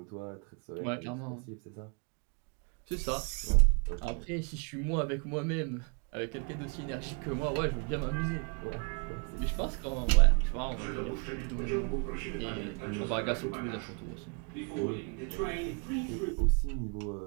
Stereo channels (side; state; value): left; quieter; 34.7 dB